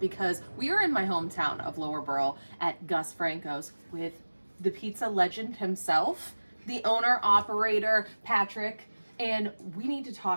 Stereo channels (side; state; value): both; inverted; correlation -1.00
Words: we are in my hometown of Lower Borough at Gus Franco's with the pizza legend himself, the owner, operator, Patrick, and we need to